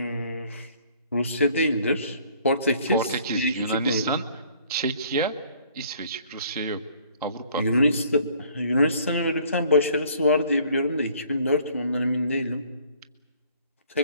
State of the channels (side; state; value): both; inverted; correlation -0.58